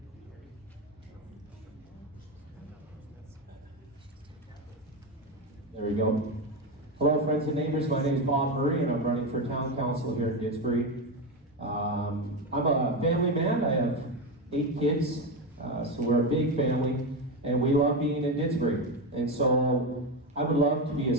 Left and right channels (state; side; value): normal; both; correlation 0.14